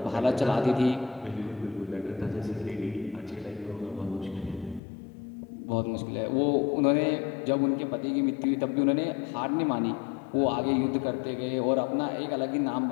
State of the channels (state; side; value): drops out; right; at 4.8 s